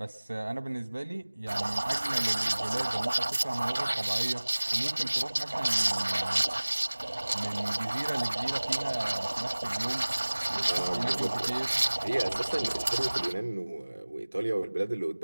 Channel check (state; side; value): inverted; both; correlation -1.00